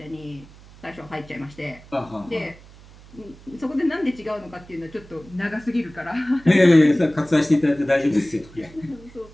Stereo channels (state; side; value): noise; right; hum, 22 dB below the sound